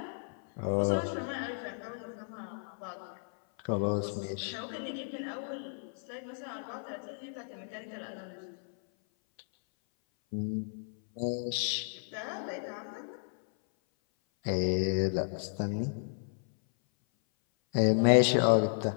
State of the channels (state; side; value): silent; right; 56 dB below the other